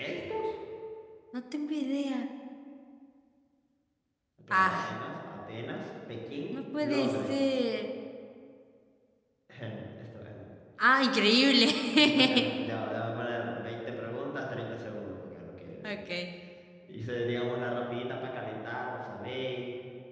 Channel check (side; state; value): both; identical; correlation 1.00